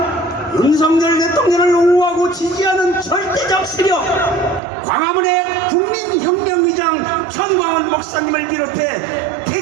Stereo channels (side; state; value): left; drops out; at 4.6 s